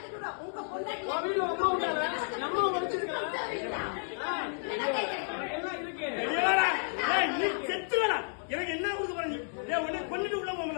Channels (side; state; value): right; silent; digital silence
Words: அம்மா உழைச்சிருக்காங்க. எனக்கு என்ன கொடுக்க போறீங்க? கொண்டுட்டு உள்ள போங்க.